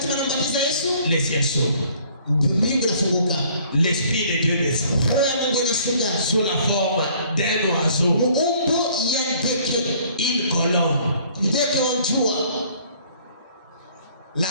les ciels s'ouvrent. L'Esprit de Dieu descend sous la forme d'un oiseau, une colombe. La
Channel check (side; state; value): both; inverted; correlation -0.58